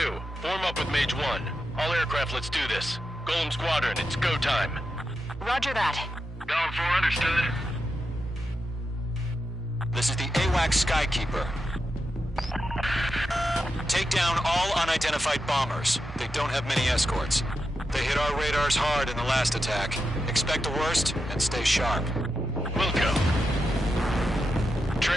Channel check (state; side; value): normal; both; correlation 0.87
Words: form up with Mage 1. All aircraft, let's do this. Golem Squadron, it's go time. Roger that. Going for understood. This is the AWACS Skykeeper. Take down all unidentified bombers. They don't have many escorts. They hit our radars hard in the last attack. Expect the worst and stay sharp. Wilco.